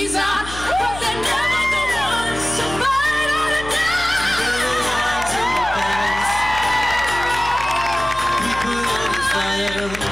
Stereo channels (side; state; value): left; noise; hum, 13 dB below the sound